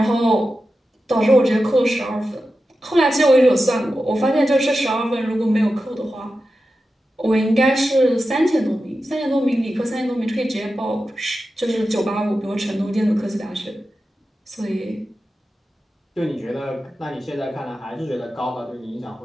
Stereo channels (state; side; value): normal; both; correlation 0.92